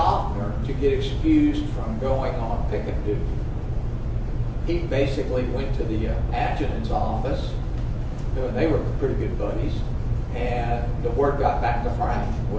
to get excused from going on picket duty. He basically went to the adjutant's office, and they were pretty good buddies, and the word got back to Frank.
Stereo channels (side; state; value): both; identical; correlation 1.00